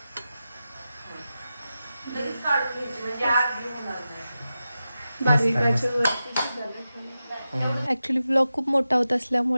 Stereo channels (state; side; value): inverted; both; correlation -0.92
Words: ॲक्च्युली व्लॉग खूप मोठा होत